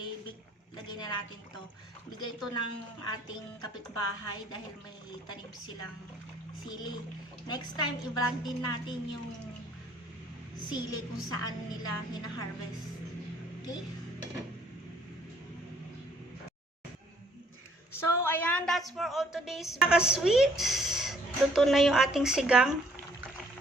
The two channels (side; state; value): both; normal; correlation 0.63